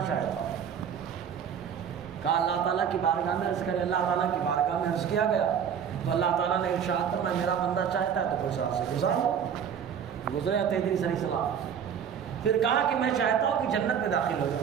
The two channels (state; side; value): quieter; left; 7.9 dB